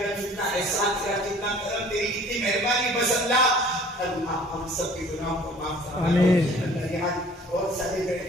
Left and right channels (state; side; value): normal; both; correlation 0.51